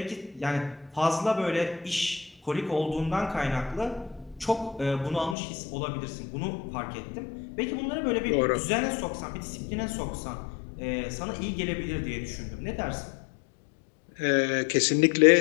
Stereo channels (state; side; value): drops out; right; at 5.4 s